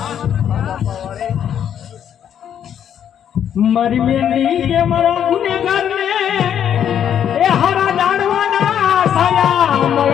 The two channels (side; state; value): right; quieter; 9.3 dB